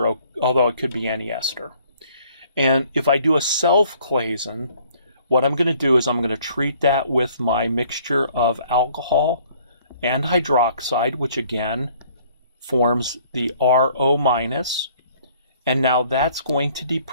although it could be any ester. And if I do a self-Claisen, what I'm going to do is I'm going to treat that with my mixture of alcohol and hydroxide, which again forms the RO-. And now that's going to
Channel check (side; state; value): both; inverted; correlation -0.59